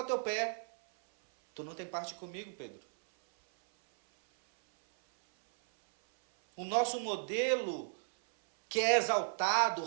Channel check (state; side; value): silent; left; 55 dB below the other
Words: teu pé, tu não tem parte comigo, Pedro. O nosso modelo, que é exaltado,